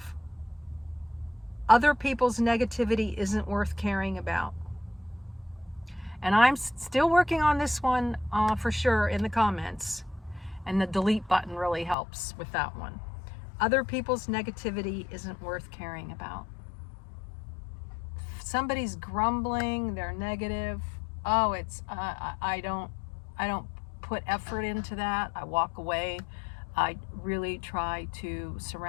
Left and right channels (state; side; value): drops out; right; at 12.0 s